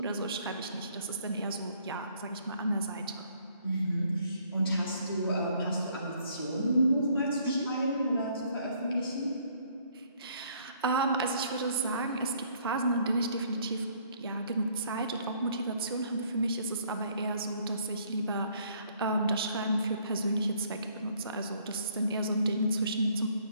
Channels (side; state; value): both; inverted; correlation -0.64